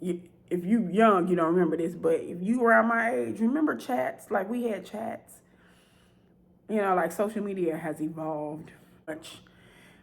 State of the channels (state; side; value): identical; both; correlation 1.00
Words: if you young, you don't remember this, but if you around my age, remember chats? Like we had chats. You know, like social media has evolved much.